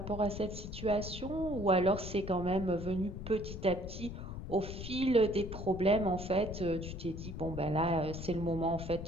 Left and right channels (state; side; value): noise; left; rumble, 8 dB below the sound